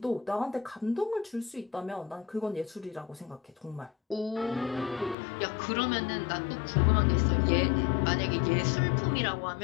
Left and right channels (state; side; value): drops out; right; at 5.2 s